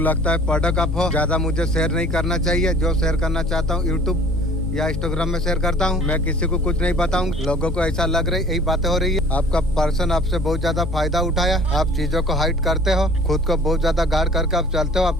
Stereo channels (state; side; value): normal; both; correlation 0.50